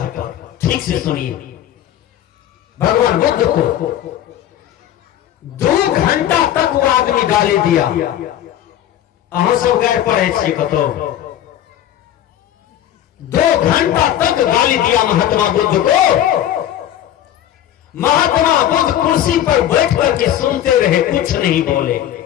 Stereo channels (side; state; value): right; quieter; 11.6 dB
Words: पर। ठीक से सुनिए, भगवान बुद्ध को 2 घंटा तक वो आदमी गाली दिया। अहों सब गैर पढ़े छे कतो 2 घंटा तक गाली दिया महात्मा बुद्ध को। महात्मा बुद्ध कुर्सी पर बैठ करके सुनते रहे, कुछ नहीं बोले।